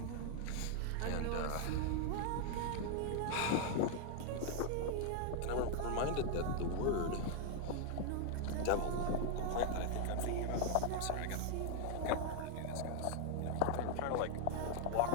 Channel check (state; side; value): different; both; correlation 0.00